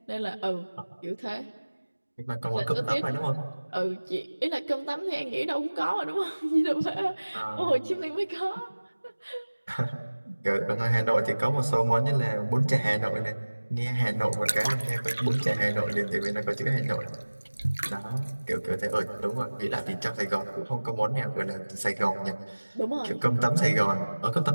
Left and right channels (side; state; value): both; inverted; correlation -1.00